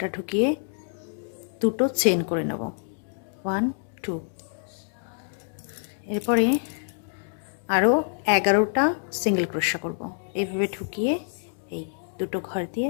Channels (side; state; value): right; silent; digital silence